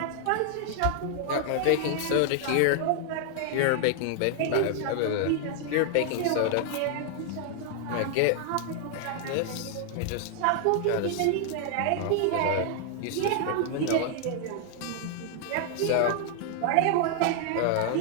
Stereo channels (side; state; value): both; different; correlation 0.00